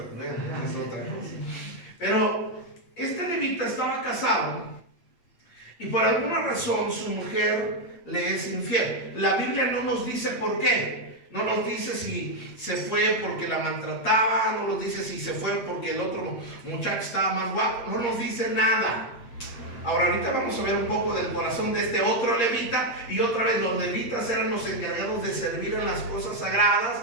otra cosa. Pero este levita estaba casado, y por alguna razón su mujer le es infiel. La Biblia no nos dice por qué, no nos dice si se fue porque la maltrataba, no nos dice si se fue porque el otro muchacho estaba más guapo, no nos dice nada. Ahora, ahorita vamos a ver un poco del corazón de este otro levita, y otra vez los levitas eran los encargados de servir en las cosas sagradas,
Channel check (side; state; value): right; late; 8.6 ms